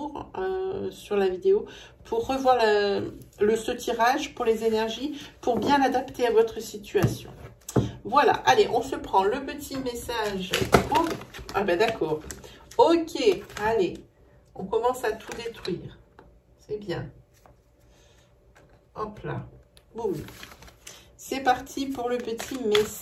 sur la vidéo pour revoir ce tirage pour les énergies, pour bien l'adapter à votre situation. Voilà, allez, on se prend le petit message. Oh, ah ben d'accord. Ok, allez, on commence à tout détruire. C'est bien. Hop là. Boum. C'est parti pour le petit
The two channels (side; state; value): both; identical; correlation 1.00